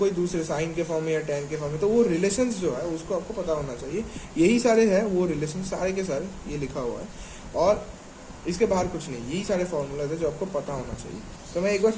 दूसरे साइन के फॉर्म में या टेन के फॉर्म में। तो वो रिलेशंस जो है उसको आपको पता होना चाहिए। यही सारे है वो रिलेशन, सारे के सारे ये लिखा हुआ है और इसके बाहर कुछ नहीं, यही सारे फॉर्मूलाज है जो आपको पता होना चाहिए। तो मैं एक बार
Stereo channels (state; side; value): identical; both; correlation 1.00